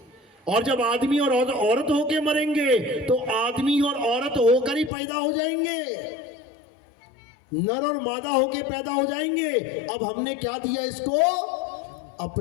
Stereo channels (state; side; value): drops out; right; at 4.9 s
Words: और जब आदमी और औरत होके मरेंगे तो आदमी और औरत होकर ही पैदा हो जाएंगे। नर और मादा होके पैदा हो जाएंगे। अब हमने क्या दिया इसको?